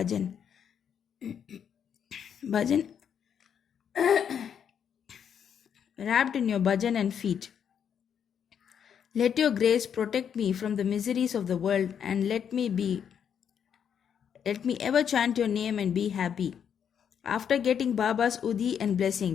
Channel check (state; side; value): quieter; right; 8.1 dB